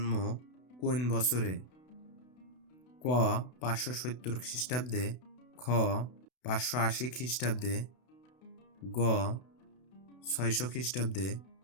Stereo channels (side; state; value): right; late; 32 ms